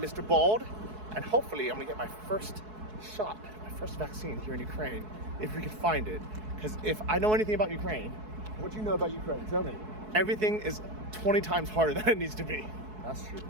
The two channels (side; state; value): left; late; 4.7 ms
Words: Bald, and hopefully I'm gonna get my first shot, my first vaccine here in Ukraine, if we can find it. Because if I know anything about Ukraine, what do you know about Ukraine? Tell me. everything is 20 times harder than it needs to be. That's true.